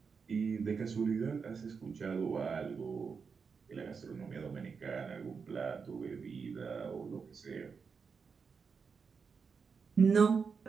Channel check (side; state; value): left; quieter; 5.6 dB